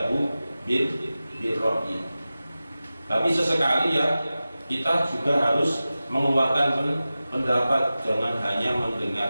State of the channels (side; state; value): both; inverted; correlation -0.95